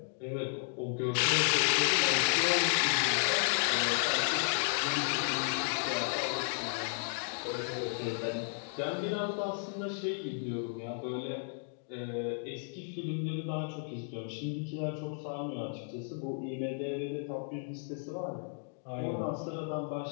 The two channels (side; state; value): right; silent; 55 dB below the other